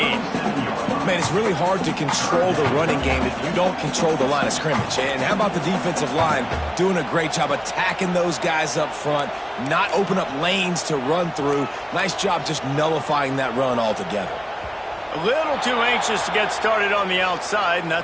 Man, it's really hard to control the running game if you don't control the line of scrimmage. And how about the defensive line doing a great job attacking those guys up front, not open up lanes to run through. Nice job just nullifying that run altogether. A little too anxious to get started on the outside, and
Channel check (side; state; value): both; identical; correlation 1.00